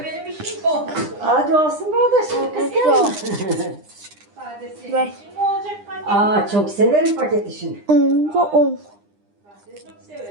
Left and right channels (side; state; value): left; late; 9.9 ms